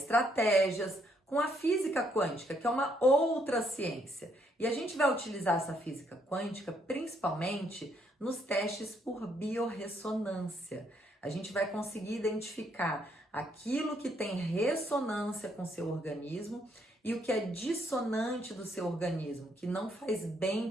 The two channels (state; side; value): normal; both; correlation 0.71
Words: com a física quântica, que é uma outra ciência. E a gente vai utilizar essa física quântica principalmente nos testes por biorressonância. A gente vai conseguir identificar aquilo que tem ressonância com o seu organismo e o que é dissonante do seu organismo, que não faz